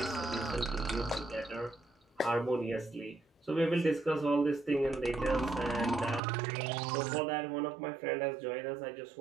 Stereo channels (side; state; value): left; drops out; at 6.2 s